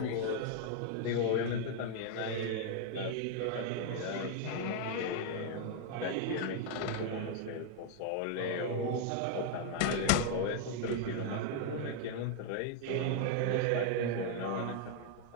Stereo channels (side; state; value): both; different; correlation 0.00